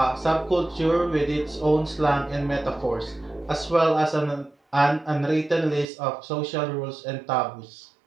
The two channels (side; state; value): left; drops out; at 5.9 s